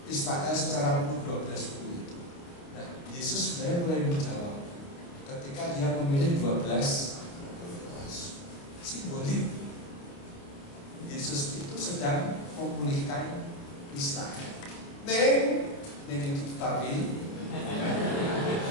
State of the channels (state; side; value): late; right; 29 ms